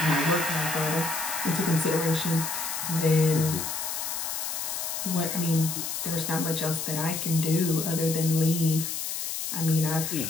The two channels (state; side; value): noise; left; hiss, 3 dB below the sound